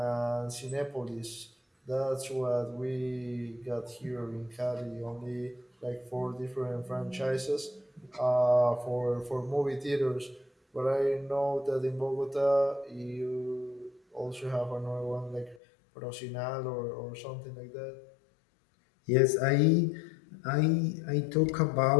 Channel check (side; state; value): right; drops out; at 15.6 s